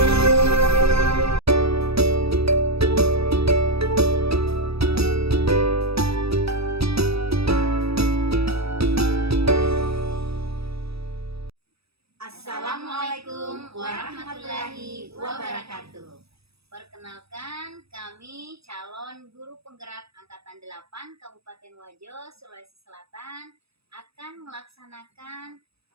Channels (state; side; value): late; left; 0.77 ms